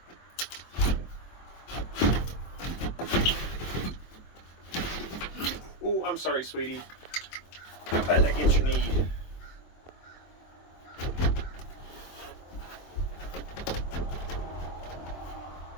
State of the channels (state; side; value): late; right; 23 ms